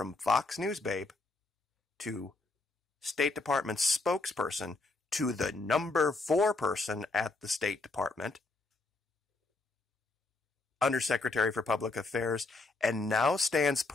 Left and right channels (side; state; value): right; quieter; 3.4 dB